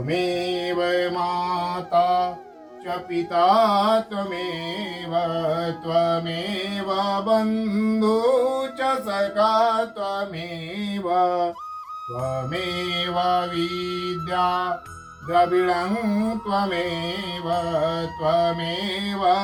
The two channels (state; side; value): identical; both; correlation 1.00